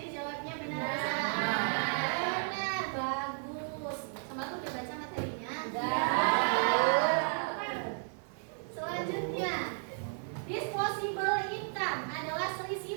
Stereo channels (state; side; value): silent; left; 55 dB below the other